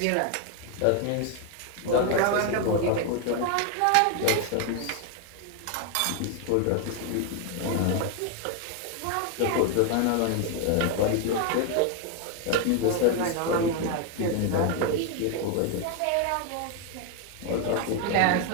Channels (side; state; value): both; different; correlation 0.01